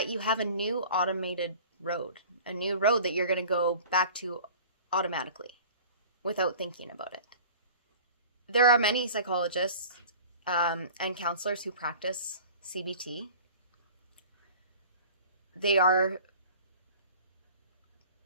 you have a new automated road, a new road that you're going to go back to automatically without thinking about it. There are many psychologists and counselors who practice CBT. They are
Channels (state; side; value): inverted; both; correlation -0.43